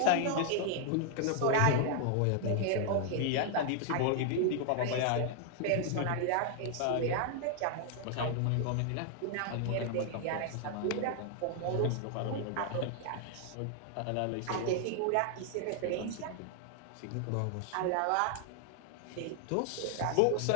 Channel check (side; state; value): both; different; correlation 0.00